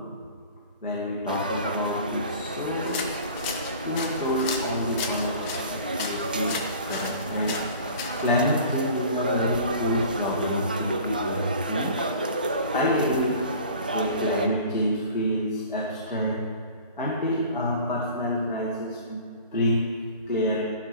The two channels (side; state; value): both; inverted; correlation -0.43